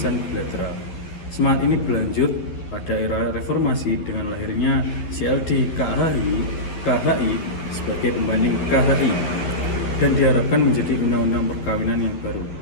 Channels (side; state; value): right; late; 12 ms